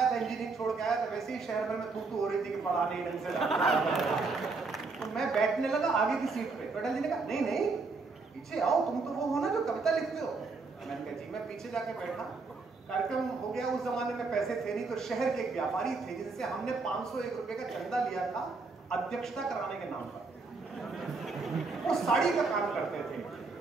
था, इंजीनियरिंग छोड़ के आया था, वैसे ही शहर भर में तू हो रही थी कि पढ़ा नहीं ढंग से। तो मैं बैठने लगा आगे की सीट पे, अटल जी ने कहा नहीं पीछे आओ, तुम तो वो हो ना जो कविता लिखते हो। मैंने कहा जी मैं पीछे जाके बैठा। कार्यक्रम हो गया, उस जमाने में पैसे थे नहीं, तो शहर के एक व्यापारी थे जिनसे हमने 501 रुपए का चंदा लिया था अध्यक्षता कराने के नाम पर। वो साड़ी का काम करते थे,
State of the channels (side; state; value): left; quieter; 4.1 dB